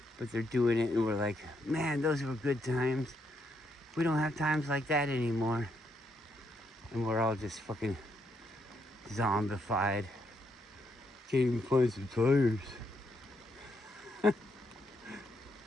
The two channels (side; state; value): both; normal; correlation 0.77